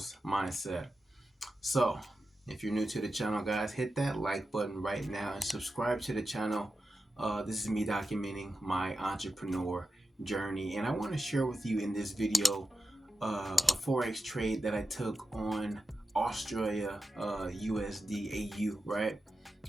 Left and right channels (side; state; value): both; normal; correlation 0.91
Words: Mindset. So, if you're new to the channel, guys, hit that like button right now and subscribe to the channel. This is me documenting my entrepreneur journey, and I want to share with you in this video a forex trade that I took on Australia USD AU, right?